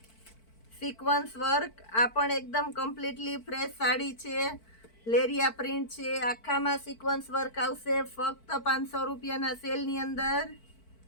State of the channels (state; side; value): late; right; 4.5 ms